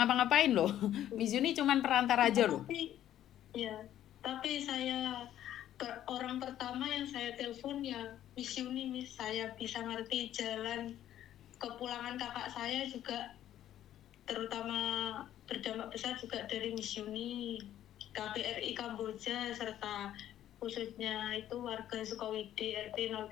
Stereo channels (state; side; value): quieter; right; 11.8 dB